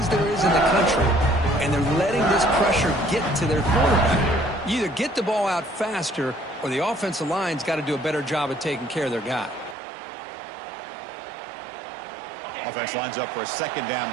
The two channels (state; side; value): drops out; left; at 9.8 s